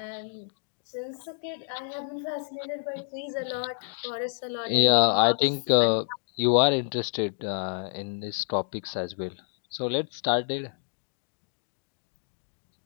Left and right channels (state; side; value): silent; right; digital silence